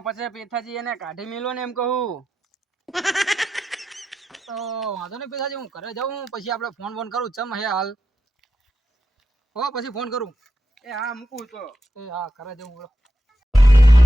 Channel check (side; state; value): both; normal; correlation 0.87